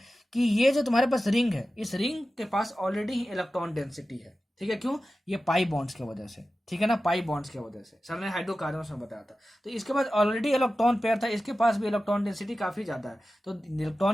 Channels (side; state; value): both; normal; correlation 0.94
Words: कि ये जो तुम्हारे पास रिंग है, इस रिंग के पास ऑलरेडी ही इलेक्ट्रॉन डेंसिटी है, ठीक है। क्यों, ये पाई बॉन्ड्स की वजह से, ठीक है ना, पाई बॉन्ड्स की वजह से सर ने हाइड्रोकार्बन में बताया था। तो इसके पास ऑलरेडी इलेक्ट्रॉन पेयर था, इसके पास भी इलेक्ट्रॉन डेंसिटी काफी ज्यादा है। तो